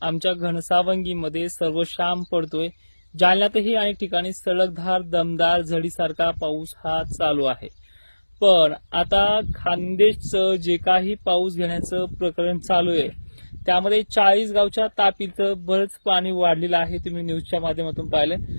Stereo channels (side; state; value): both; inverted; correlation -1.00